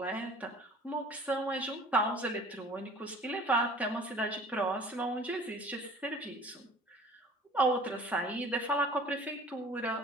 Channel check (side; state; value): both; normal; correlation 0.47